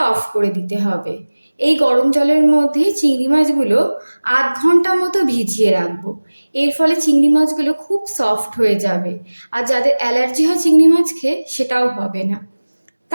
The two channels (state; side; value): inverted; both; correlation -1.00